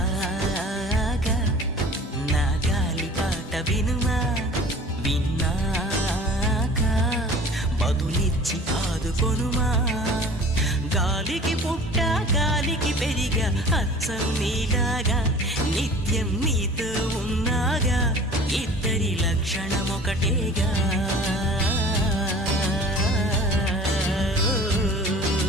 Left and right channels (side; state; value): both; normal; correlation 0.44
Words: నా గాలి పాట వినుమా, విన్నాక బదులిచ్చి ఆదుకొనుమా. గాలికి పుట్ట గాలికి పెరిగా అచ్చం నీలాగా, నిత్యం నీతో ఉన్నాగా, ఇద్దరి లక్షణం ఒకటేగా.